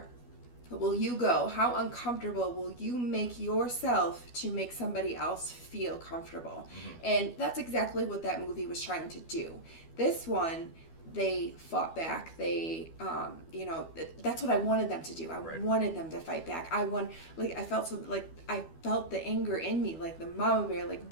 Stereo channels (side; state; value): right; late; 12 ms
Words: will you go? How uncomfortable will you make yourself to make somebody else feel comfortable? And that's exactly what that movie was trying to do. This one, they fought back. They, that's what I wanted them to do. I wanted them to fight back. I felt the anger in me, like the mama bear, like,